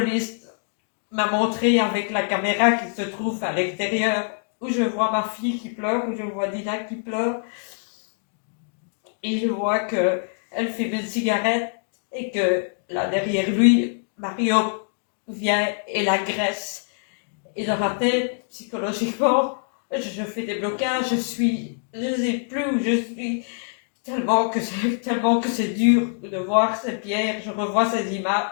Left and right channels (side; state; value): right; silent; digital silence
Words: m'a montré avec la caméra qui se trouve à l'extérieur, où je vois ma fille qui pleure, où je vois Dina qui pleure, et je vois qu'elle fait une cigarette et que là derrière lui, Mario vient et l'agresse. Et dans ma tête, psychologiquement, je fais des blocages, je ne sais plus où je suis, tellement que c'est dur de voir ces pierres, je revois ces images